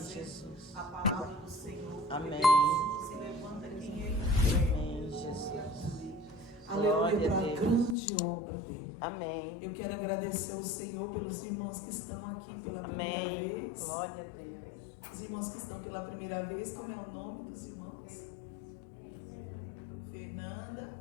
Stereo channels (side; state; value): right; drops out; at 8.0 s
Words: a palavra do Senhor. Amém. Se levanta quem Ele quer. Amém, Jesus. Aleluia, para a grande obra dele. Amém. Eu quero agradecer ao Senhor pelos irmãos que estão aqui pela primeira vez. Glória a Deus. Os irmãos que estão pela primeira vez, como é o nome dos irmãos?